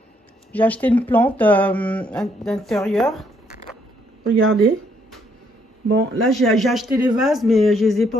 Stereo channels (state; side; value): normal; both; correlation 0.70